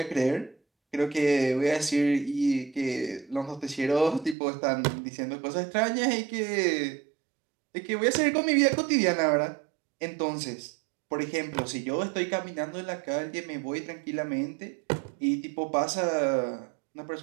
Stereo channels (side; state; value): left; drops out; at 4.4 s